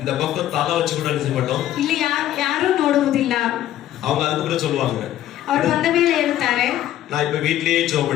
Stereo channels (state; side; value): quieter; right; 12.7 dB